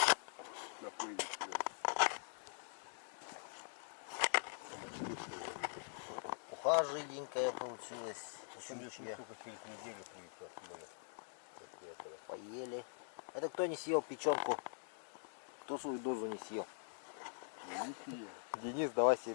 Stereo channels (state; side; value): silent; right; digital silence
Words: на поезде. Уха жиденькая получилась. Щучья. Поели. Это кто не съел печенку? Кто свою дозу не съел? Денис, давай